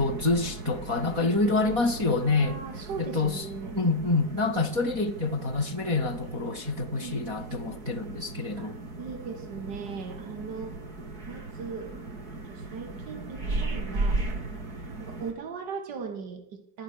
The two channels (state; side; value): late; left; 4.1 ms